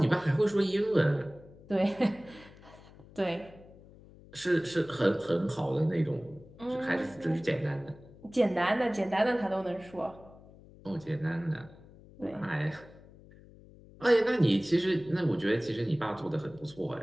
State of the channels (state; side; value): noise; left; hum, 22 dB below the sound